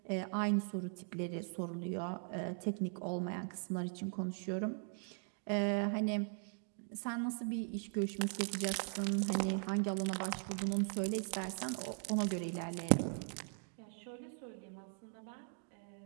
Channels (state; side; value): silent; left; 51 dB below the other